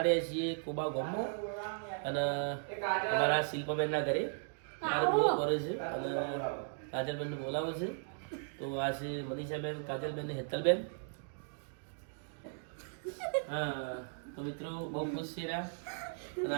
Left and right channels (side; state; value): left; silent; digital silence